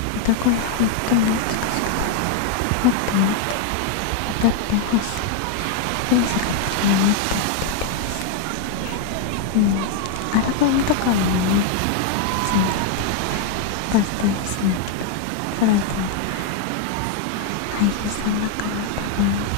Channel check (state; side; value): different; both; correlation 0.00